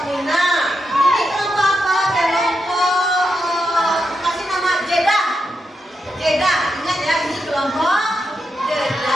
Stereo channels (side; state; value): both; normal; correlation 0.85